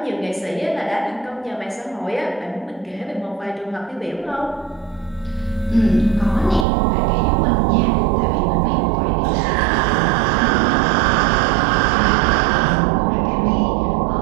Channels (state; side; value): drops out; left; at 6.7 s